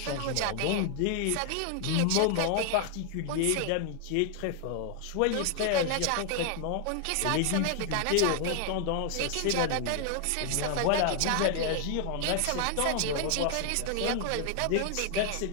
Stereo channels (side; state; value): both; different; correlation 0.00